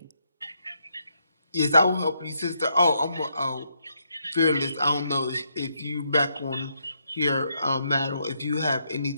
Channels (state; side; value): inverted; both; correlation -0.77